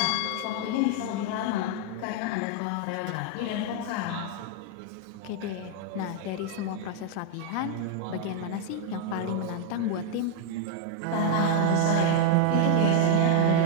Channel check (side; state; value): both; different; correlation 0.00